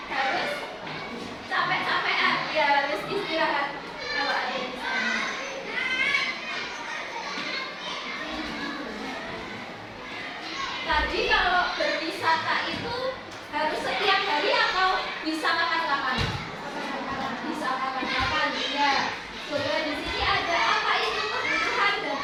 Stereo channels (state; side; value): identical; both; correlation 1.00